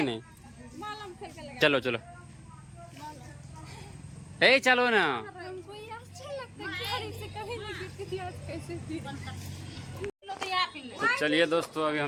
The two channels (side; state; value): both; identical; correlation 1.00